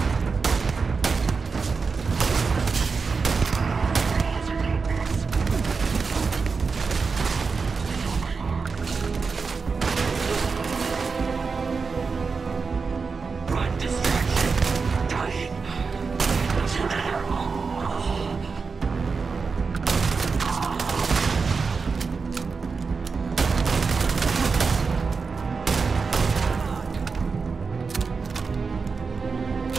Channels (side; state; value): left; quieter; 4.9 dB